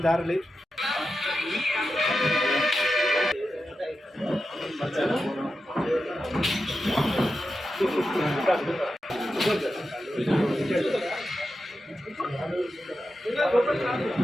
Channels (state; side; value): normal; both; correlation 0.90